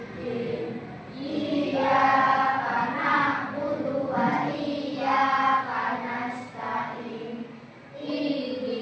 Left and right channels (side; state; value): both; identical; correlation 1.00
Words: Iyyaka na'budu wa iyyaka nasta'in.